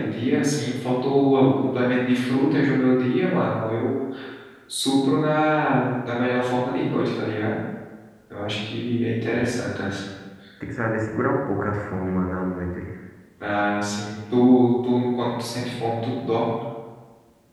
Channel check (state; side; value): identical; both; correlation 1.00